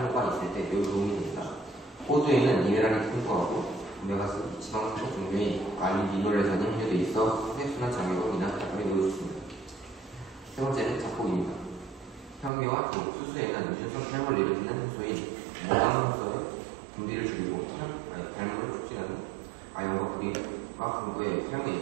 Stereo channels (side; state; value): left; drops out; at 12.5 s